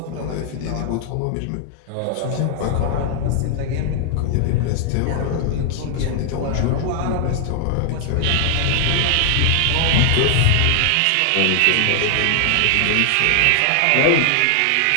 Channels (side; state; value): both; different; correlation 0.00